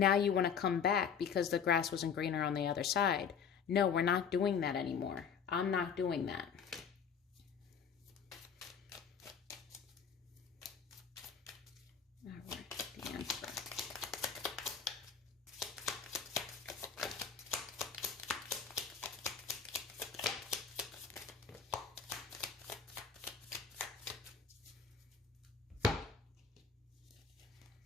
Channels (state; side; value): quieter; right; 6.8 dB